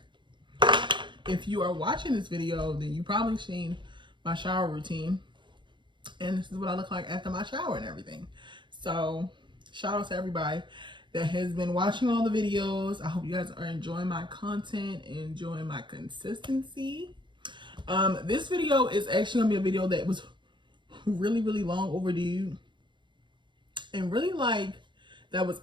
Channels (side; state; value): left; late; 0.23 ms